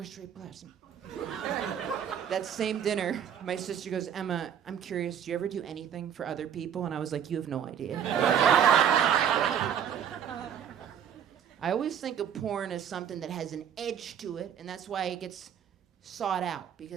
present. That same dinner, my sister goes, Emma, I'm curious, do you ever do anything for other people? And I was like, you have no idea. I always think of porn as something that has an edge to it, and that's why it gets sought out,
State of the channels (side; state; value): left; quieter; 8.8 dB